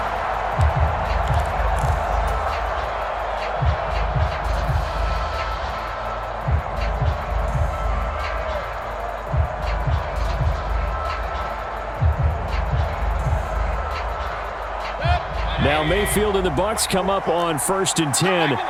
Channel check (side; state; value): both; identical; correlation 1.00